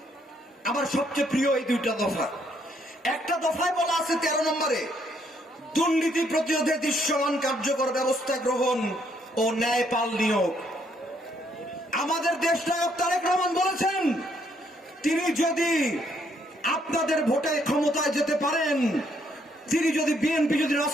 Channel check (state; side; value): normal; both; correlation 0.71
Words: আমার সবচেয়ে প্রিয় এই দুইটা দফা। একটা দফায় বলা আছে ১৩ নম্বরে, দুর্নীতি প্রতিরোধে দৃশ্যমান কার্যকর ব্যবস্থা গ্রহণ ও ন্যায়পাল নিয়োগ। আমাদের দেশনায়ক তারেক রহমান বলেছেন, তিনি যদি আপনাদের ভোটে ক্ষমতায় যেতে পারেন, তিনি যদি বিএনপি যদি